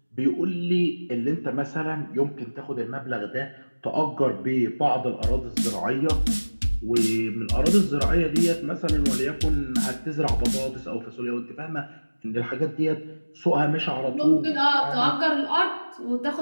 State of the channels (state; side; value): inverted; both; correlation -1.00